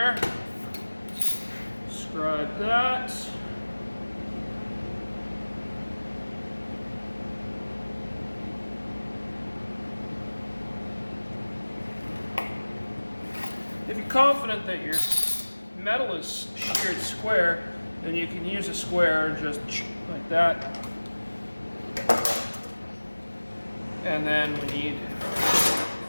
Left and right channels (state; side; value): inverted; both; correlation -1.00